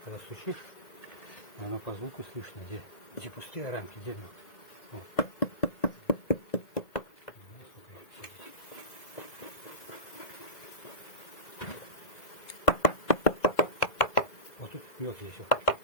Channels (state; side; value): late; right; 1.9 ms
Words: когда стучишь, оно по звуку слышно, где пустые рамки, где мед. Вот. Вот тут мед есть.